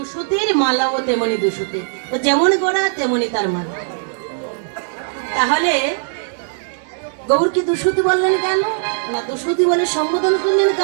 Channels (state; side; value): silent; left; 62 dB below the other